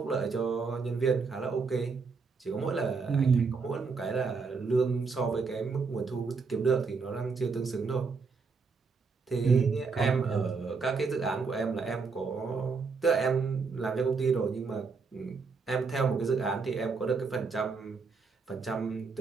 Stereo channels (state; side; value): quieter; left; 4.8 dB